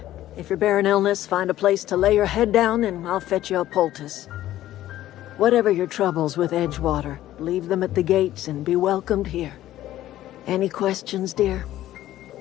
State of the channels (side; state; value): right; quieter; 13.8 dB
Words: If you're bearing illness, find a place to lay your head down and I'll fetch you a poultice. Whatever your troubles with Edgewater, leave them at the gates and be welcomed here. Any questions, dear?